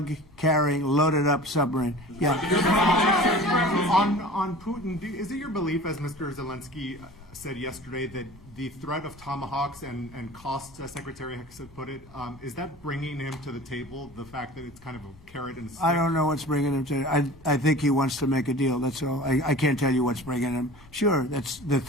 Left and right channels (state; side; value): noise; left; rumble, 25 dB below the sound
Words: loaded-up submarine. Yeah. On Putin, is it your belief, as Mr. Zelenskyy said yesterday, that the threat of tomahawks and costs, as Secretary Hicks put it, is that bringing him to the table, the fact that it's kind of a carrot and stick? I don't know what's bringing him to it. I think he wants to make a deal, that's all. I can't tell you what's bringing him. Sure, that's the